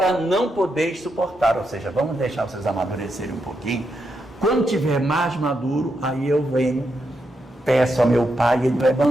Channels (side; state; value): both; normal; correlation 0.83